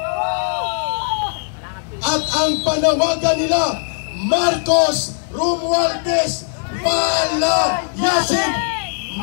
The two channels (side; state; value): right; silent; digital silence